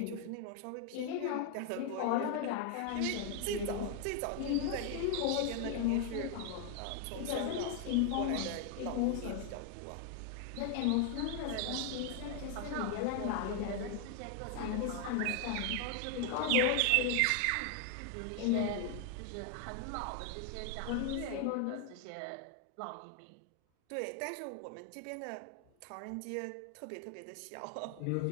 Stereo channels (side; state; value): both; different; correlation 0.00